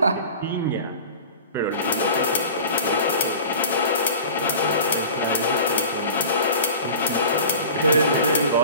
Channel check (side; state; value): both; inverted; correlation -0.38